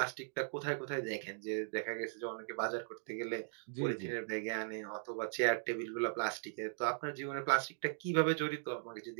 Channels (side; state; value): left; silent; digital silence